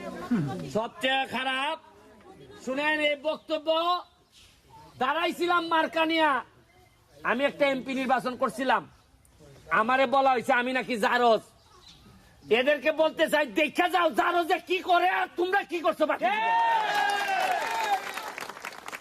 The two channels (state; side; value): identical; both; correlation 1.00